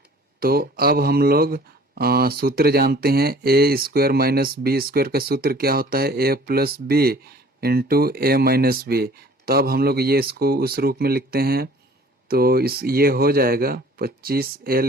तो अब हम लोग सूत्र जानते हैं, a² माइनस b² का सूत्र क्या होता है? a plus b into a minus b. तो अब हम लोग ये इसको उस रूप में लिखते हैं, तो ये हो जाएगा 25a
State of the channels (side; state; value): both; normal; correlation 0.50